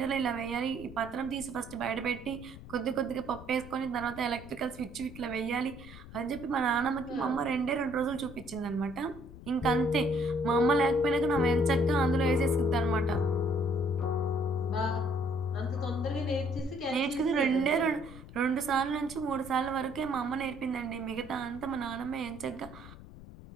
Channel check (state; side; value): noise; left; rumble, 16 dB below the sound